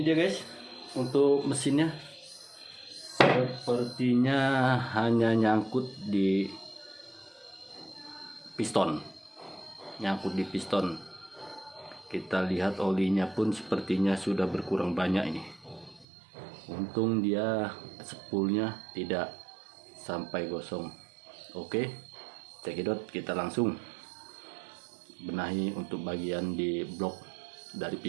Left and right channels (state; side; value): drops out; left; at 16.1 s